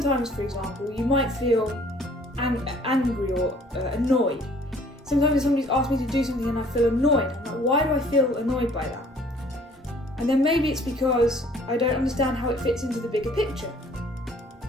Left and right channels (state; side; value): normal; both; correlation 0.56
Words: for example, you might feel angry or annoyed. Sometimes if somebody's asked me to do something and I feel annoyed, I'm like, why do I feel annoyed by that? And then maybe it's because I don't understand how it fits into the bigger picture.